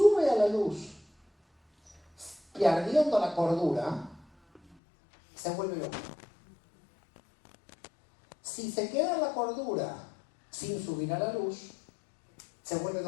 a la luz, perdiendo la cordura, se vuelve loco. si se queda en la cordura sin subir a la luz, se vuelve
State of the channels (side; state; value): right; drops out; at 4.8 s